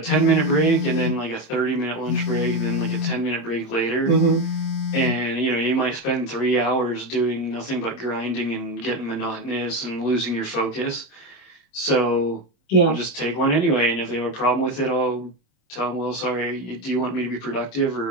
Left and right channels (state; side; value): late; right; 26 ms